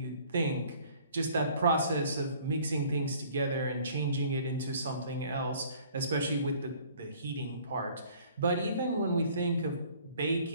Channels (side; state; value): both; inverted; correlation -0.55